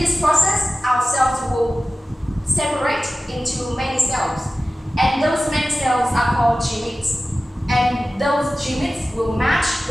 this process, our cells will separate into many cells. And those many cells are called gametes. And those gametes will match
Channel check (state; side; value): normal; both; correlation 0.96